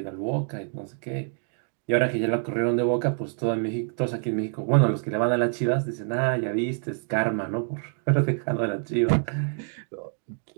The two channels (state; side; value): silent; left; 61 dB below the other